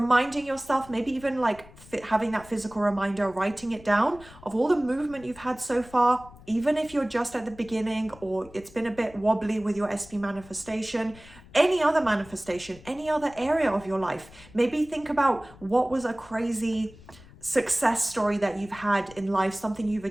yourself, maybe even like having that physical reminder, writing it down of all the movement you've had so far, even if you're just at the beginning or it's been a bit wobbly with your SP manifestation, any other manifestation, any other area of your life. Maybe think about what was a crazy success story that you've had in life, something you've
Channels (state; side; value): noise; left; rumble, 21 dB below the sound